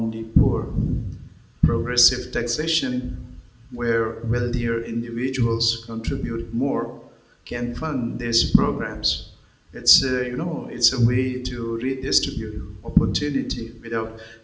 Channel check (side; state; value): both; identical; correlation 1.00